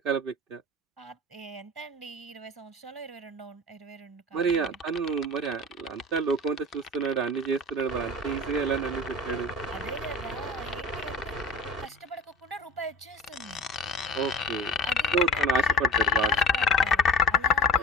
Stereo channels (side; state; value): both; normal; correlation 0.37